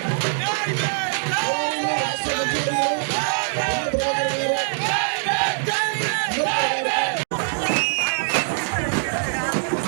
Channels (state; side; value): silent; left; digital silence